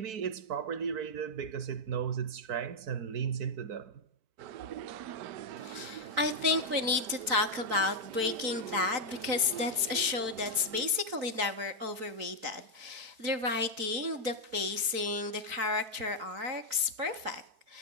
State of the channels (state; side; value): late; left; 4.5 ms